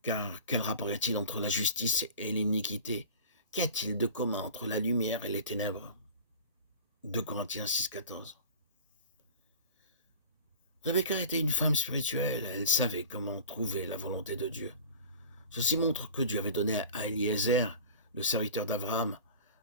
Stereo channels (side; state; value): both; inverted; correlation -0.39